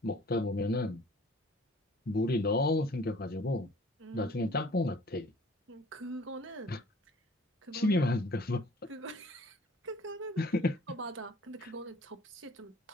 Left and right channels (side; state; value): both; normal; correlation 0.52